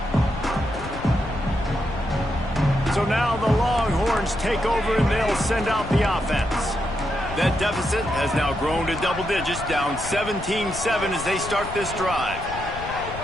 So now the Longhorns take over and they'll send out the offense. That deficit has now grown to double digits, down 17-7 as they start this drive.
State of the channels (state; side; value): noise; left; rumble, 11 dB below the sound